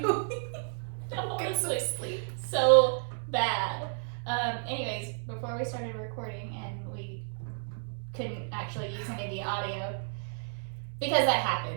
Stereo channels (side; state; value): left; silent; 57 dB below the other